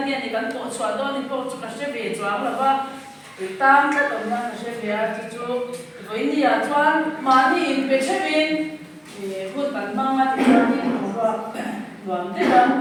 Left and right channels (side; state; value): both; identical; correlation 1.00